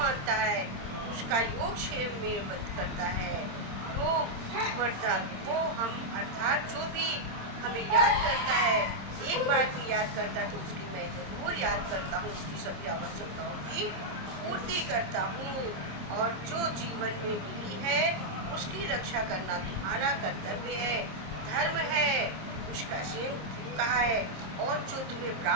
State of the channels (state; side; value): late; left; 26 ms